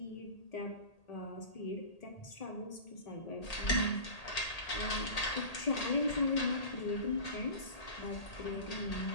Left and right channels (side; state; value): right; late; 1.8 ms